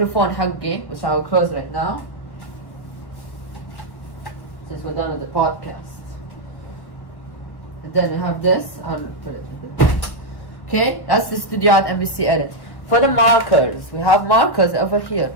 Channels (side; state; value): right; late; 1.1 ms